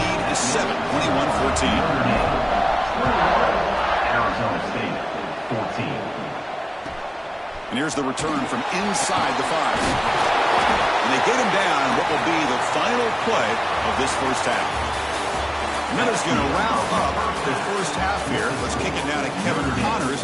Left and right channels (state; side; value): identical; both; correlation 1.00